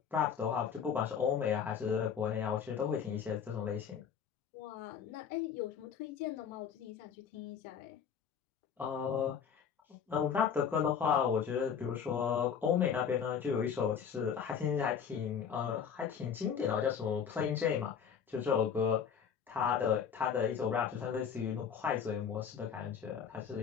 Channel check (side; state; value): right; quieter; 7.4 dB